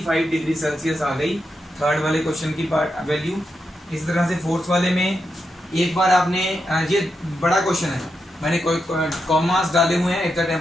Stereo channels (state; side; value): normal; both; correlation 0.86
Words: डिग्री सेल्सियस आ गई थर्ड वाले क्वेश्चन की वैल्यू। इस तरह से फोर्थ वाले में एक बार आपने, ये बड़ा क्वेश्चन है, मैंने कोई कॉमास डाले हुए हैं, if the